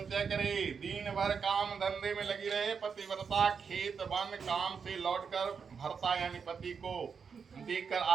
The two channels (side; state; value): left; quieter; 6.1 dB